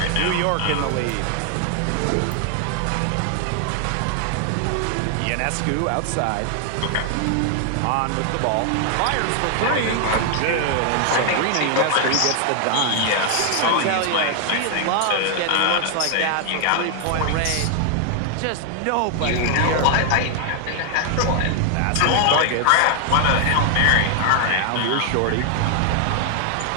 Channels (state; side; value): different; both; correlation 0.00